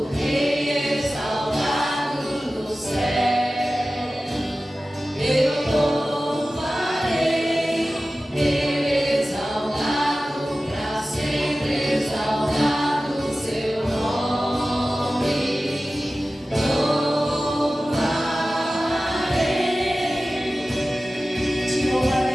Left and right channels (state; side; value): normal; both; correlation 0.96